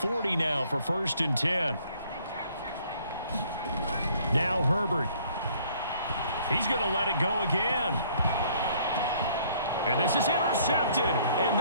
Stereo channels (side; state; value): both; inverted; correlation -0.61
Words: now for 1st and 10. Now Herbert. He's going to let it go again. And this is intercepted, and